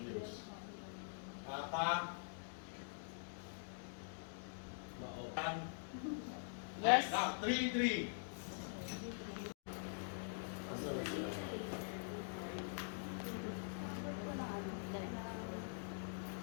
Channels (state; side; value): silent; right; digital silence